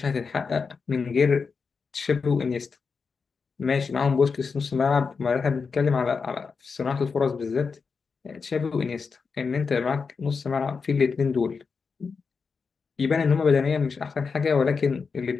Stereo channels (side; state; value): right; quieter; 5.2 dB